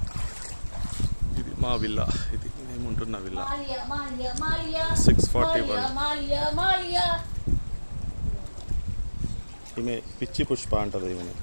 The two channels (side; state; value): both; inverted; correlation -1.00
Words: ఇది మా విల్లా. ఇది మేముంటున్న విల్లా. 641. ఈమె పిచ్చి పుష్ప అంటది. ఈమె